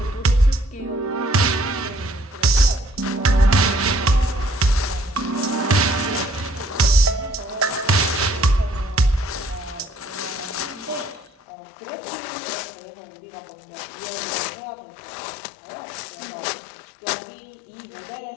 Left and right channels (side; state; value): right; drops out; at 11.3 s